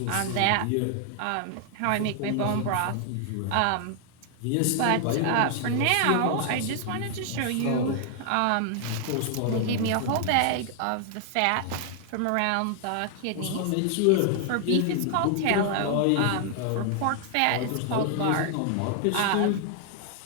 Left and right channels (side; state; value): both; different; correlation 0.00